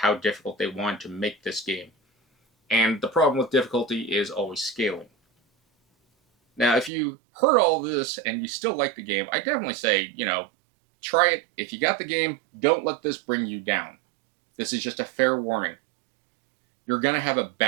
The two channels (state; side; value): drops out; left; at 6.9 s